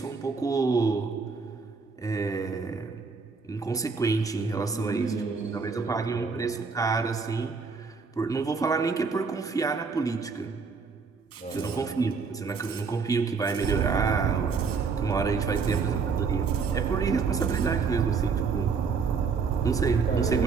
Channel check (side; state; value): left; quieter; 5.1 dB